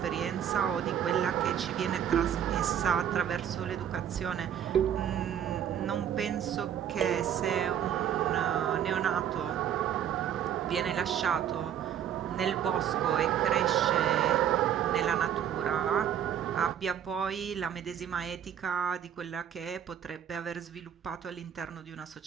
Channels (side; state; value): left; quieter; 9.4 dB